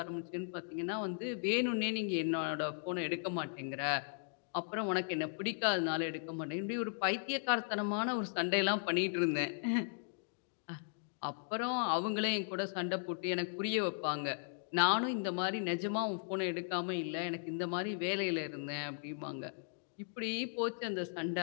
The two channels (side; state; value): right; silent; digital silence